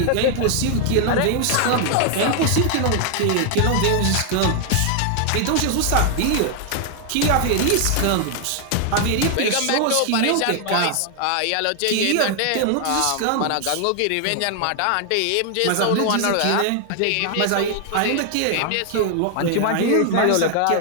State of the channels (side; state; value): both; different; correlation 0.00